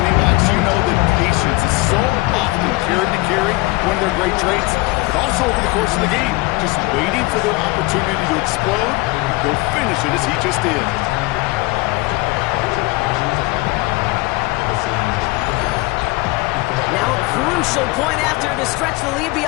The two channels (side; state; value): right; quieter; 22.2 dB